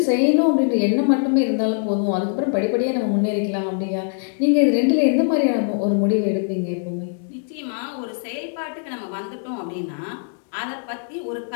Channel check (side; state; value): right; silent; digital silence